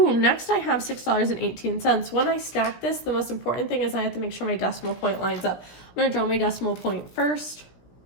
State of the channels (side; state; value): right; late; 17 ms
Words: next I have $6.18. When I stack this, the most important thing is I have to make sure my decimal point lines up. I'm going to draw my decimal point first.